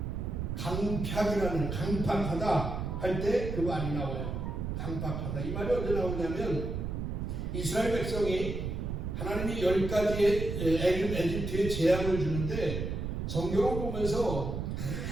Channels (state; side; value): noise; right; rumble, 3 dB below the sound